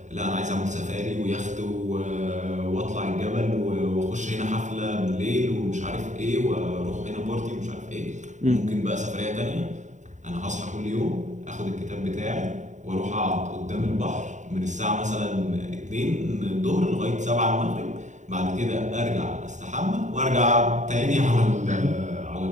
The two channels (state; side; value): late; left; 0.35 ms